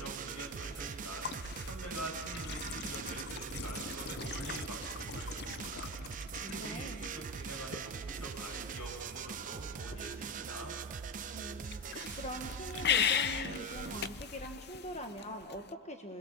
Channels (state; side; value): normal; both; correlation 0.18